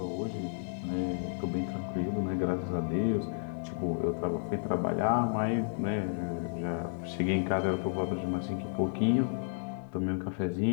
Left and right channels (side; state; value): right; silent; digital silence